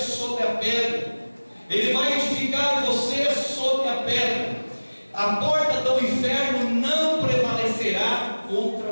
a pedra. Ele vai edificar você sobre a pedra. A porta do inferno não prevalecerá contra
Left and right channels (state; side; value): inverted; both; correlation -1.00